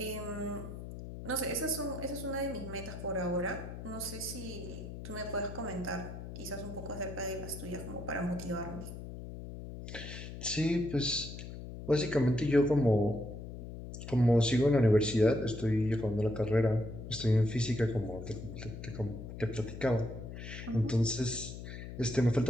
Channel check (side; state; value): left; noise; hum, 10 dB below the sound